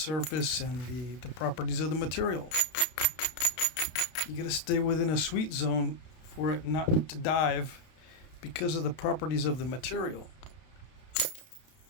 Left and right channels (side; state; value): right; late; 32 ms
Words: and the properties of the material. You got to stay within a sweet zone for it not to dive because of the properties of the material.